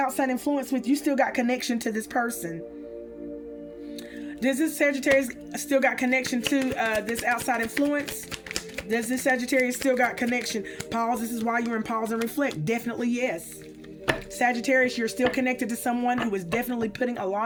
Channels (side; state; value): both; identical; correlation 1.00